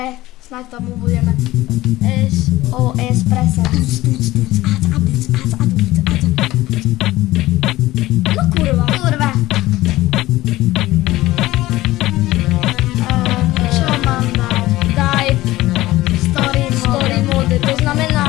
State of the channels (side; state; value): right; quieter; 17.2 dB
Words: snáď tomu budeme SOS presať. No kurva. Kurva. Čo mám dať? Daj story mode. To